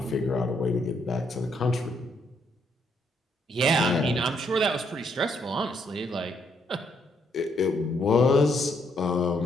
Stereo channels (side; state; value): both; normal; correlation 0.73